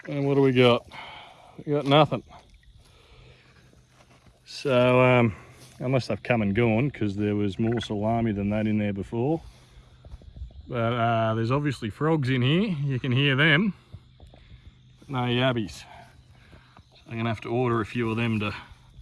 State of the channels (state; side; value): identical; both; correlation 1.00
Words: And what do we got? We got nothing. So, unless they've come and gone, because there was more salami than that in there before. But there's obviously frogs in here. You can hear them. No yabbies. So I'm gonna have to order a few of them to